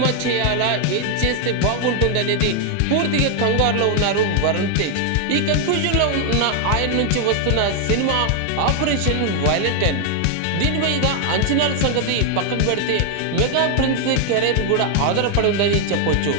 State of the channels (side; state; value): both; different; correlation 0.00